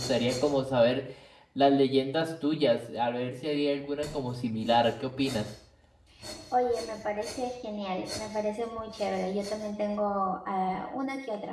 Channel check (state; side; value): identical; both; correlation 1.00